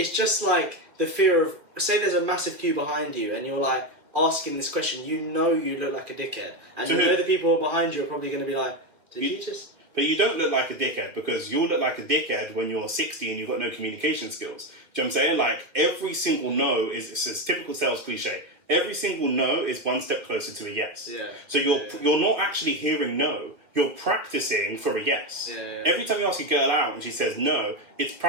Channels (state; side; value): late; left; 2.5 ms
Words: just like the fear of, say there's a massive queue behind you and you're like asking this question, you know you look like a dickhead, and you know the people behind you are probably going to be like, did you just? But you don't look like a dickhead, because you'll look like a dickhead when you're 60 and you've got no communication skills. Do you know what I'm saying? Like, every single no it's a typical sales cliche. Every single no is one step closer to a yes. So you're not actually hearing no. You're practicing for a yes. Every time you ask a girl out and she says no, it's